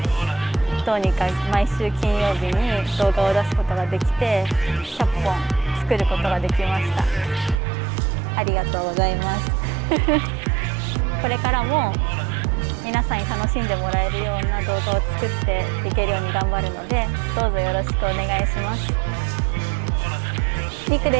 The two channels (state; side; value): drops out; left; at 7.6 s